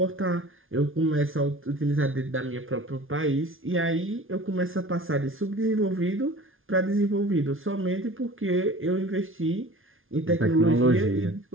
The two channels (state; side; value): late; left; 0.59 ms